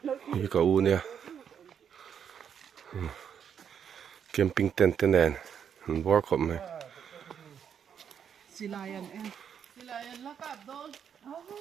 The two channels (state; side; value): quieter; left; 8.0 dB